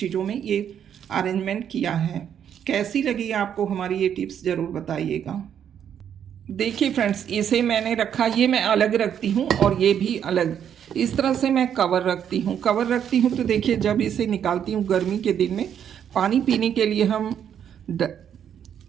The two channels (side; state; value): left; quieter; 9.0 dB